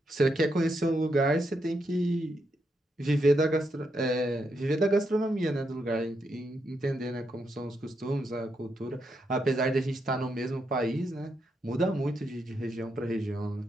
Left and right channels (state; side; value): normal; both; correlation 0.81